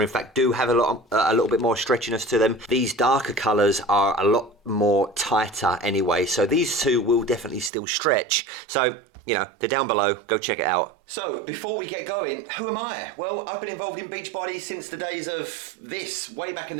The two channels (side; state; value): left; drops out; at 7.7 s